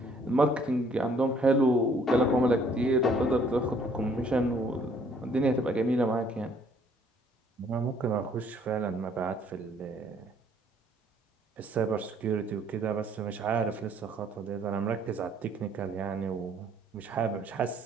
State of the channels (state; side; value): normal; both; correlation 0.62